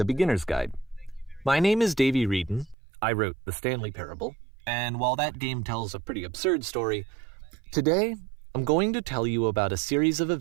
Beginner's Guide. My name is Davey Reedon. I wrote The Stanley Parable, and while that game tells a pretty absurd story, today I'm going to tell you about a series of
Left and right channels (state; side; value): drops out; left; at 2.8 s